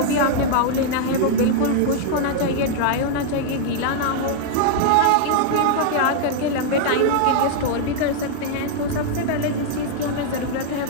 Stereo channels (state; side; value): different; both; correlation -0.01